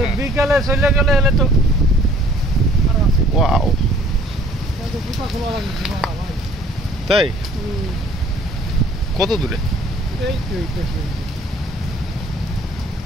বিকেলে চলে গেলে হলে তো ওয়াও, তাই কত দূরে?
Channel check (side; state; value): both; normal; correlation 0.57